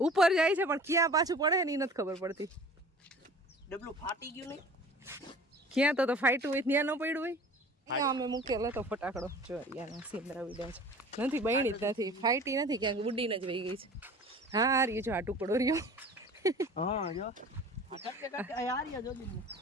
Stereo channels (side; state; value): both; normal; correlation 0.43